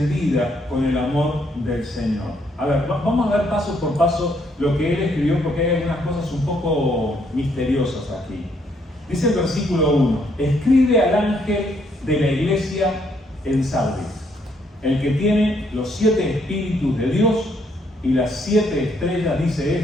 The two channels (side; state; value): both; normal; correlation 0.71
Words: con el amor del Señor. A ver, vamos a ver paso por paso lo que Él escribió, porque hay algunas cosas un poco misteriosas aquí. Dice el versículo 1: escribe al ángel de la iglesia en Sardis, el que tiene los 7 espíritus de Dios y las 7 estrellas, dice